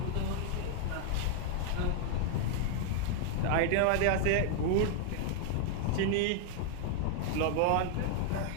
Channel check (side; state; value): both; different; correlation 0.00